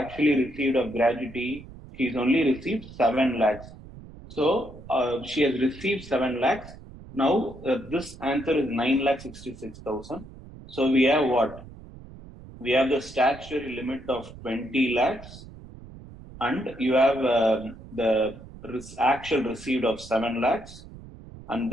received of gratuity? She has only received 7 lakhs. So she has received 7 lakhs. Now this answer is 9,66,000. So we have what? We have the statutory limit of 20 lakhs, and you have the actual received of 7 lakhs, and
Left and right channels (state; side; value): noise; right; rumble, 17 dB below the sound